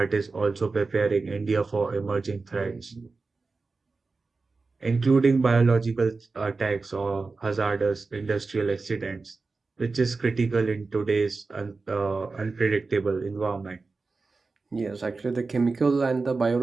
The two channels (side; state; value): left; quieter; 4.0 dB